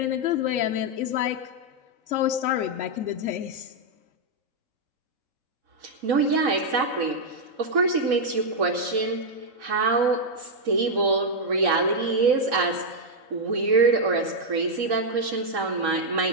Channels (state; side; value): late; left; 3.9 ms